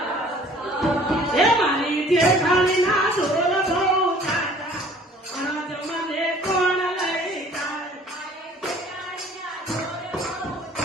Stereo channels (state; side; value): normal; both; correlation 0.53